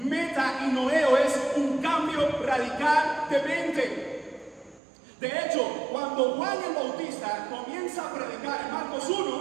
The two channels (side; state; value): left; drops out; at 4.8 s